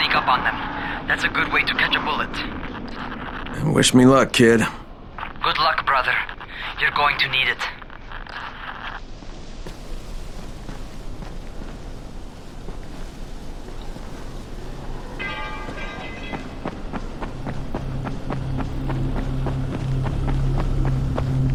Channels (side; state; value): both; identical; correlation 1.00